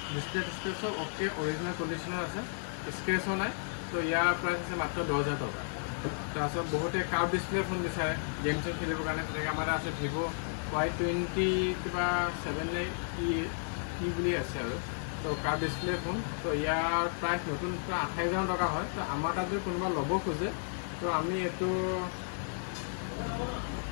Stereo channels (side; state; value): right; silent; 56 dB below the other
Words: ডিছপ্লে চব অ'কে, অৰিজিনেল কণ্ডিশ্যনৰ আছে, স্ক্ৰেচো নাই। তো ইয়াৰ প্ৰাইচ আছে মাত্ৰ 10,000 টকা। তাৰপিছত বহুতে কাৰ্ভ ডিছপ্লে ফোন বিচাৰে গেম চেম খেলিবৰ কাৰণে, তেনেকৈ আমাৰ আছে ভিভ' Y20 কিবা 7 ই বুলি আছে আৰু। তো কাৰ্ভ ডিছপ্লে ফোন, তো ইয়াৰ প্ৰাইচ নতুন 28,000 টকা হয়। তো আমাৰ তাত যদি কোনোবা ল'ব খোজে, তো আমি এইটো